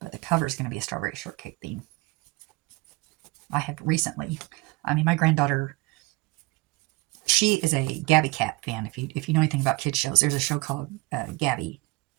but the cover is going to be a strawberry shortcake theme. I have recently, I mean, my granddaughter, she is a Gabby Cat fan. If you know anything about kids shows, there's a show called Gabby's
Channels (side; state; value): left; quieter; 23.6 dB